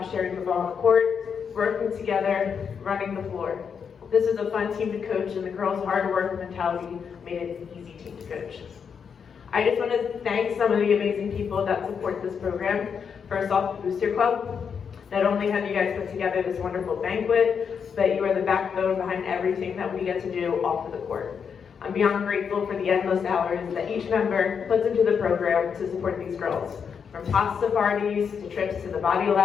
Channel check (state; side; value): quieter; right; 6.7 dB